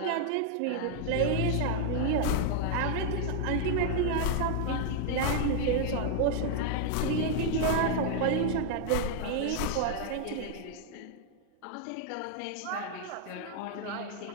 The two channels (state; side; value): different; both; correlation 0.00